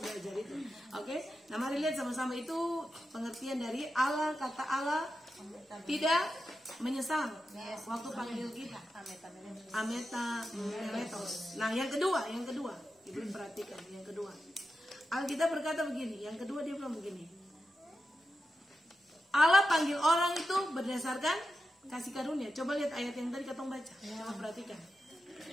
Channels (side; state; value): both; normal; correlation 0.90